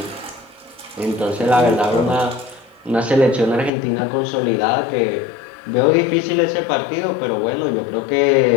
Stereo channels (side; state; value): right; drops out; at 3.7 s